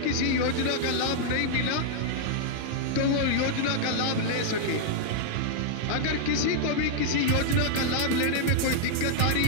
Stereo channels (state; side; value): different; both; correlation -0.01